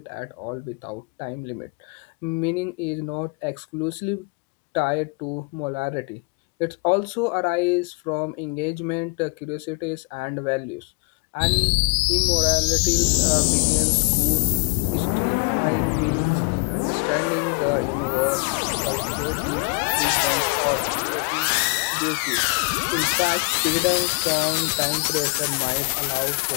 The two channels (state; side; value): quieter; right; 32.7 dB